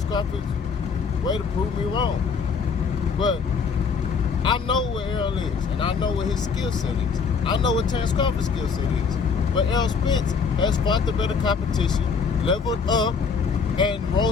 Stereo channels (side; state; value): right; quieter; 5.6 dB